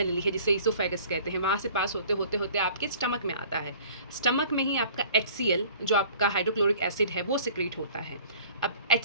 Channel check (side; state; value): both; inverted; correlation -0.50